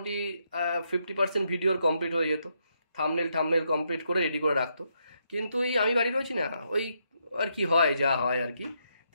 50% ভিডিওর কমপ্লিট হয়ে যেত। থাম্বনেল কমপ্লিট করে রেডি করে রাখতো। কিন্তু আমি বাড়ি রয়েছি না, ওই আর কি হয়, যা হয় আর কি।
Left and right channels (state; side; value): inverted; both; correlation -0.78